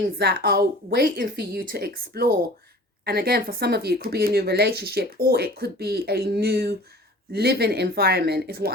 that are waiting for you to explore. And again, for some of you, it could be a new relationship, or it could be a new living environment is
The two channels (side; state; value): both; normal; correlation 0.44